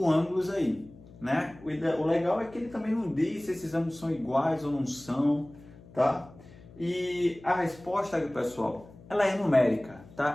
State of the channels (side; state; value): left; noise; hum, 21 dB below the sound